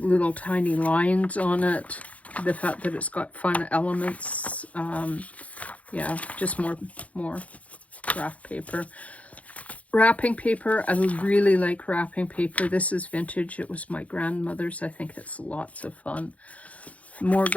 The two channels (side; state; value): right; late; 0.067 ms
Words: tiny lines on it. The fact that it's got fun elements. Yeah, just more graph paper. Wrapping paper, I really like wrapping paper. This is vintage. It was my grandmother's. I think it's lots of fun. More